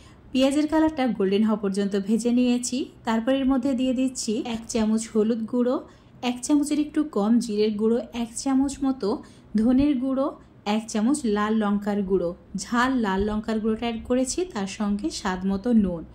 পেঁয়াজের কালারটা গোল্ডেন হওয়া পর্যন্ত ভেজে নিয়েছি। তারপর এর মধ্যে দিয়ে দিচ্ছি 1 চামচ হলুদ গুঁড়ো, 1 চামচের একটু কম জিরের গুঁড়ো, 1 চামচ মতো ধনের গুঁড়ো, 1 চামচ লাল লঙ্কার গুঁড়ো, ঝাল লাল লঙ্কার গুঁড়োটা অ্যাড করেছি, তার সঙ্গে স্বাদ মতো নুন।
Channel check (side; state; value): both; identical; correlation 1.00